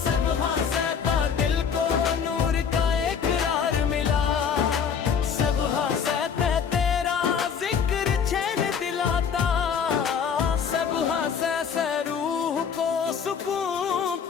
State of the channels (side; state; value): right; quieter; 7.0 dB